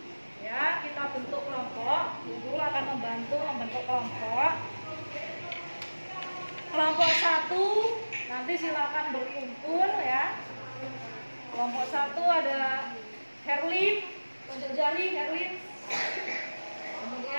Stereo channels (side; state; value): both; inverted; correlation -1.00